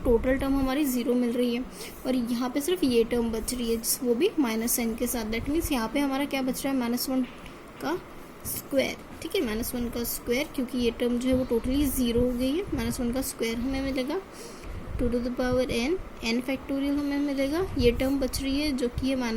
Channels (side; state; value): both; identical; correlation 1.00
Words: total term हमारी zero मिल रही है, और यहाँ पे सिर्फ ये टर्म बच रही है वो भी माइनस एन के साथ। दैट मीन्स यहाँ पे हमारा क्या बच रहा है, माइनस वन का स्क्वायर। ठीक है, माइनस वन का स्क्वायर, क्योंकि ये टर्म जो है वो टोटली ज़ीरो हो गई है। माइनस वन का स्क्वायर हमें मिलेगा two to the power n, n factorial हमें मिलेगा। ये टर्म बच रही है जो कि है